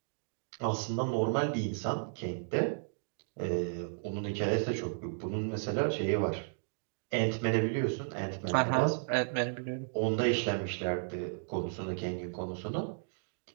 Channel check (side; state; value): left; silent; digital silence